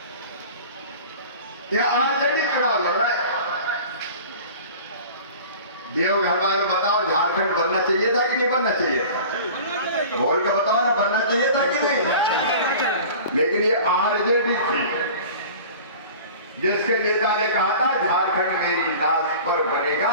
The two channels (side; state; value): both; inverted; correlation -0.41